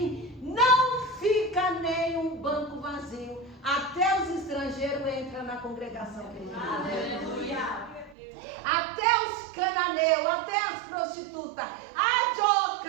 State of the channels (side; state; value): left; drops out; at 8.2 s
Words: Não fica nem um banco vazio. Até os estrangeiros entram na congregação. Aleluia. Até os cananeus, até as prostitutas.